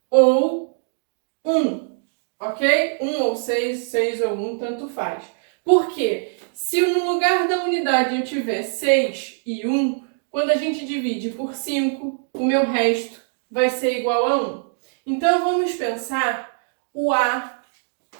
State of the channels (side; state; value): left; silent; digital silence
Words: ou 1. Ok? 1 ou 6, 6 ou 1, tanto faz. Por quê? Se no lugar da unidade eu tiver 6 e 1, quando a gente divide por 5, o meu resto vai ser igual a 1. Então, vamos pensar o A